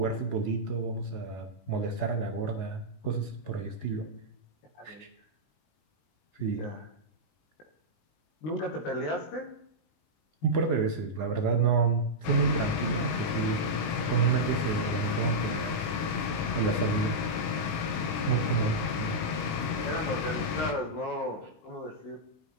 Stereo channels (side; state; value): right; late; 19 ms